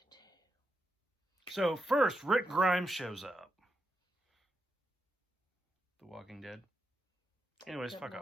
So first, Rick Grimes shows up. The Walking Dead. Anyways, fuck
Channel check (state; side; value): normal; both; correlation 0.85